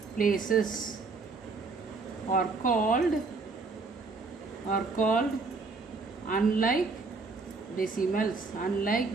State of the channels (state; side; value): quieter; left; 4.1 dB